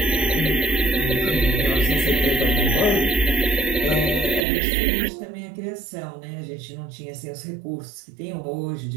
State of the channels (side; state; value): left; drops out; at 4.5 s